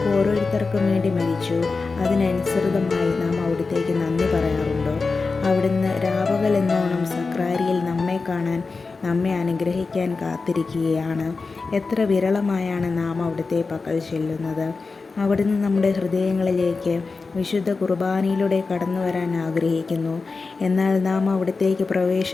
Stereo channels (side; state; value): right; quieter; 4.2 dB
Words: ഓരോരുത്തർക്കും വേണ്ടി മരിച്ചു. അതിനനുസൃതമായി നാം അവിടുത്തേക്ക് നന്ദി പറയാറുണ്ടോ? അവിടുന്ന് രാപകലെന്നോണം സക്രാരിയിൽ നമ്മെ കാണാൻ, നമ്മെ അനുഗ്രഹിക്കാൻ കാത്തിരിക്കുകയാണ്. എത്ര വിരളമായാണ് നാം അവിടുത്തെ പക്കൽ ചെല്ലുന്നത്. അവിടുന്ന് നമ്മുടെ ഹൃദയങ്ങളിലേക്ക് വിശുദ്ധ കുർബാനയിലൂടെ കടന്നു വരാൻ ആഗ്രഹിക്കുന്നു. എന്നാൽ നാം അവിടത്തേക്ക്